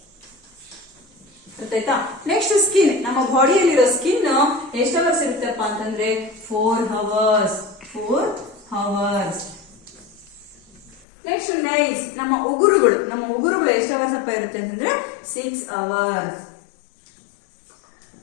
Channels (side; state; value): right; drops out; at 11.1 s